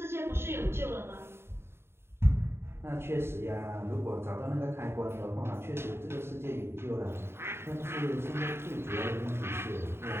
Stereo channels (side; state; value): left; late; 0.12 ms